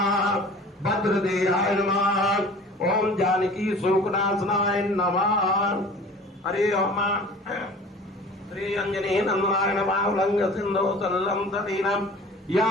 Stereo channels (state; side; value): normal; both; correlation 0.44